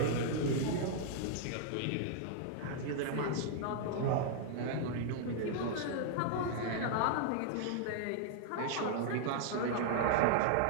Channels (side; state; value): both; different; correlation -0.01